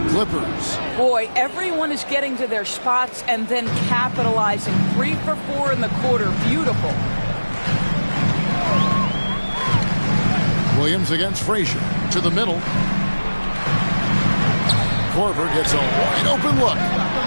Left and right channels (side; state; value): both; inverted; correlation -1.00